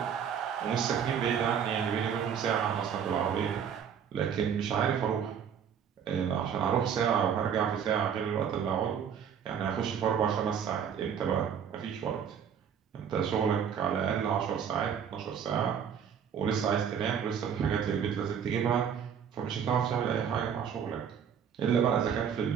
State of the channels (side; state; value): left; quieter; 7.9 dB